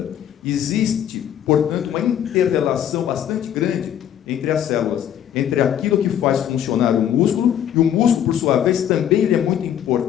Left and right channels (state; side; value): quieter; right; 10.1 dB